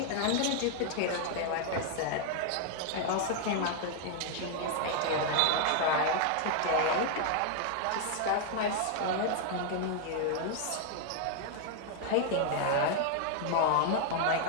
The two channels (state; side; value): different; both; correlation 0.00